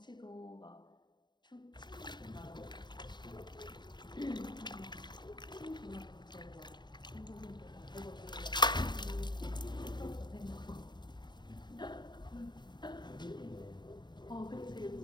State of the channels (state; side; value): late; right; 0.21 ms